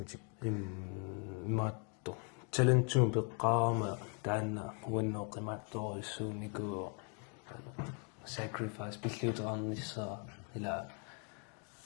immaatto talentuum peqqaarama taanna uanneoqimaattoruissuuniku sacrifice pilliuteqarnissaa ila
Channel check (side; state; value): right; quieter; 39.0 dB